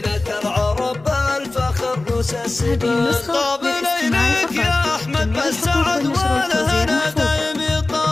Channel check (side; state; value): right; quieter; 3.1 dB